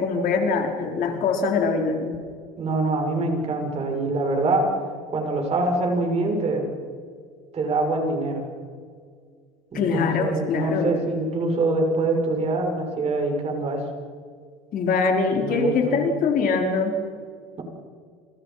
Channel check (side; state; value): both; normal; correlation 0.45